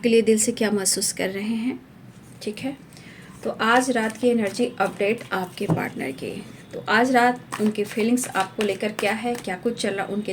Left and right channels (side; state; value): both; identical; correlation 1.00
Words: लिए दिल से क्या महसूस कर रहे हैं। ठीक है, तो आज रात की एनर्जी अपडेट आपके पार्टनर की। तो आज रात उनकी फीलिंग्स आपको लेकर क्या है, क्या कुछ चल रहा उनके